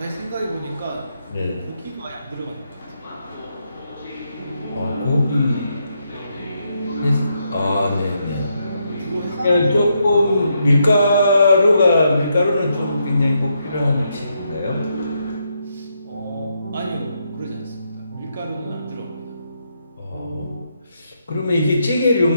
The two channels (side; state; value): both; inverted; correlation -0.79